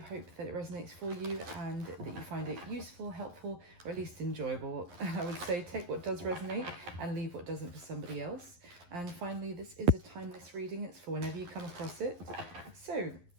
hope that it resonates for you and that you find it useful, helpful, or at least enjoyable. I would say take what does resonate and leave what doesn't for somebody else. And finally, this is a timeless reading. It's for whenever you come across it. So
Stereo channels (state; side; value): late; left; 11 ms